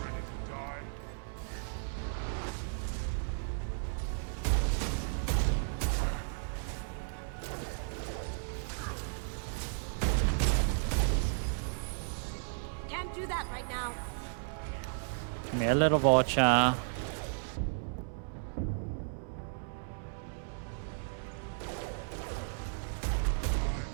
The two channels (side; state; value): left; silent; digital silence